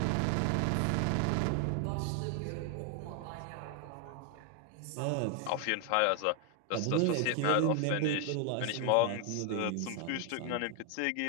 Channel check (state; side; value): different; both; correlation 0.00